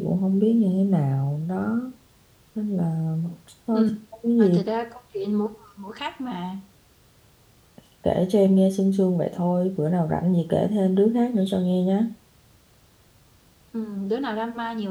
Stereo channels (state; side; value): identical; both; correlation 1.00